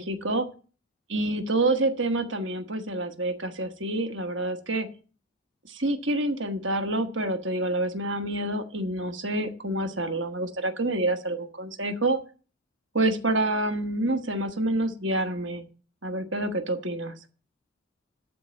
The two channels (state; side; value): normal; both; correlation 0.06